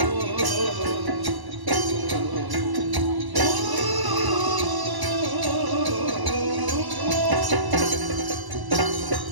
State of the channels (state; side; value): late; left; 1.0 ms